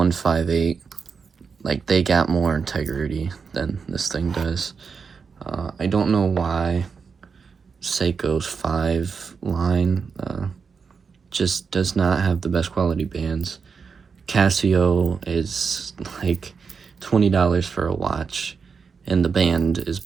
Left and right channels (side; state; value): left; quieter; 5.6 dB